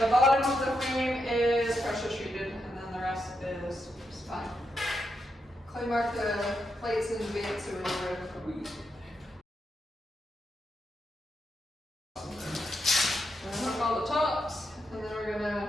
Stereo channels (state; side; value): normal; both; correlation 0.83